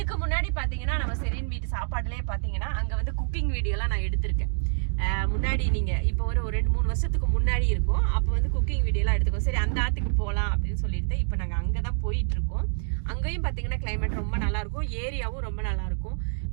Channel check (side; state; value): left; silent; digital silence